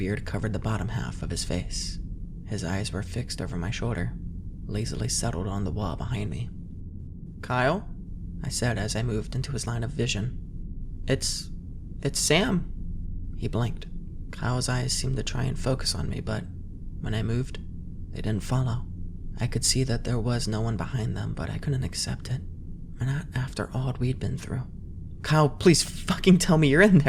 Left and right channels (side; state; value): both; identical; correlation 1.00